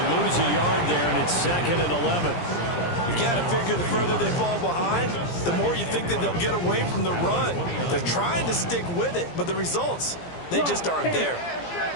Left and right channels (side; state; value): right; late; 17 ms